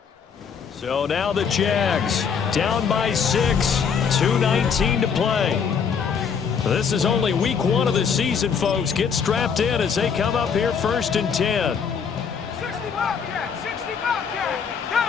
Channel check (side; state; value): right; quieter; 6.6 dB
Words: So now the Jags down by 6, 2:19 to play. This is only week 1 of the season, folks. Get strapped in as they come up here first and 10. 60 Bobcat, 60 Bobcat,